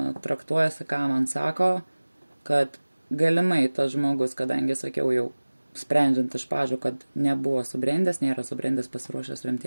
traktuojasi, ką man sako, kad galimai tas žmogus, kadangi sakiau jau, sprendžiant iš pažų, kad nebuvo subrendęs, nėra subrendęs pasiruošęs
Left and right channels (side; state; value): both; inverted; correlation -1.00